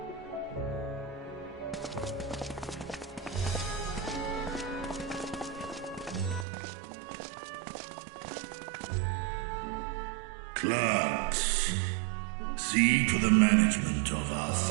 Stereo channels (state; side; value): drops out; left; at 6.5 s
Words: Clerks, see to the management of our